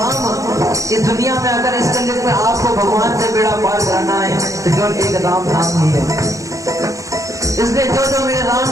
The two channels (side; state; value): left; late; 0.16 ms